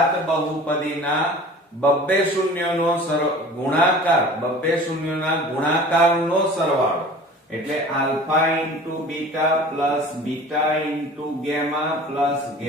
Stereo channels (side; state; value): both; normal; correlation 0.42